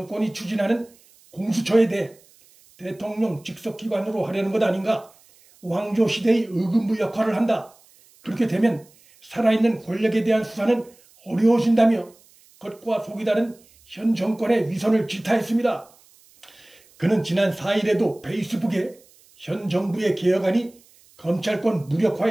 추진하는 공수처에 대해 대통령 직속기관으로 하려는 것 아닌가, 왕조시대의 의금부 역할을 한다. 그렇게 되면 살아있는 권력에 대한 수사는 어려워진다며 겉과 속이 다른 현 정권의 위선을 질타했습니다. 그는 지난 4일에도 페이스북에 현 정부의 개혁안이 검찰권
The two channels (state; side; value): noise; right; hiss, 29 dB below the sound